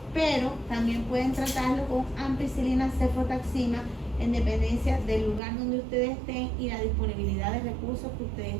pero también pueden tratarlo con ampicilina, cefotaxima, en dependencia del lugar donde ustedes estén y la disponibilidad de recursos que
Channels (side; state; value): left; drops out; at 5.4 s